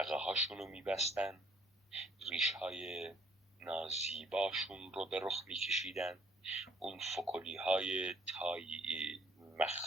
هاشون رو میبستن ریش‌های نازیباشون رو به رخ می‌کشیدن، اون فکلی‌های تایی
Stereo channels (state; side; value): normal; both; correlation 0.63